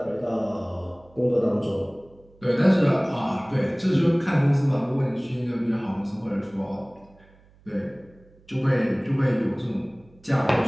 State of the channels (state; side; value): noise; right; hum, 28 dB below the sound